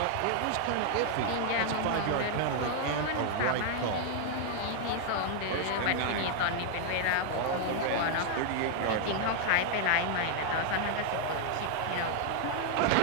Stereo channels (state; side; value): different; both; correlation 0.00